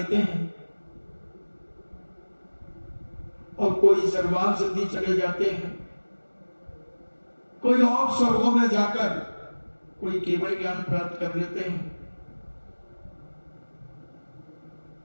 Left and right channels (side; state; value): both; inverted; correlation -1.00